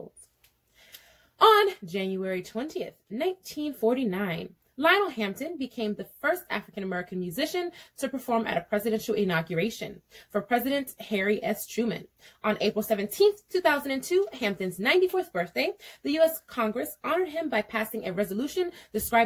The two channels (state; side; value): identical; both; correlation 1.00